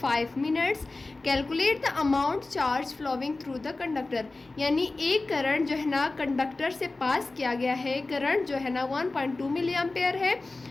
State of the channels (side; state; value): right; quieter; 3.3 dB